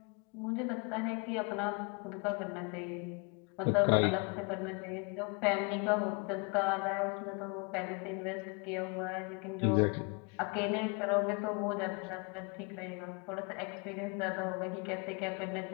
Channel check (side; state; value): right; quieter; 33.1 dB